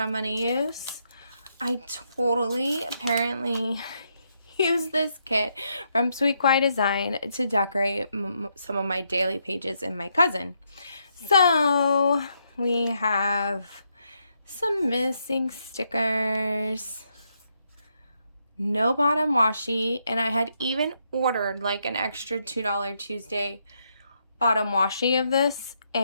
going to use. I totally apparently use this kit from LiQWYD Design to decorate some of my daily pages in my cousin. So we have some missing stickers, no bottom washi, and I had even ordered like an extra $2 Tuesday bottom washi of this,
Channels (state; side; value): inverted; both; correlation -0.78